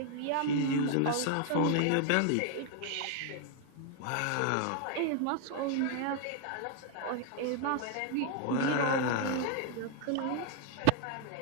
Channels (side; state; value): both; different; correlation 0.00